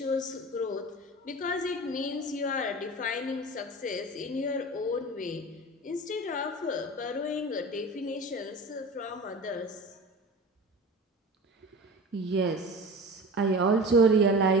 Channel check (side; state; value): both; normal; correlation 0.35